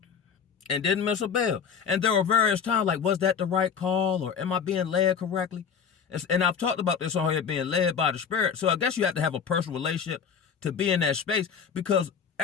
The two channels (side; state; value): right; quieter; 6.9 dB